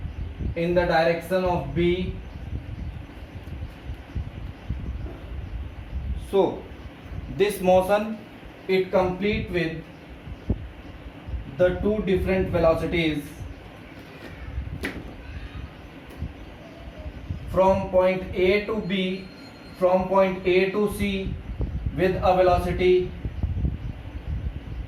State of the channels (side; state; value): both; identical; correlation 1.00